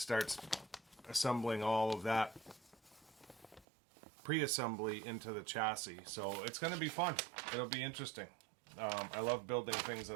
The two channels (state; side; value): drops out; left; at 3.7 s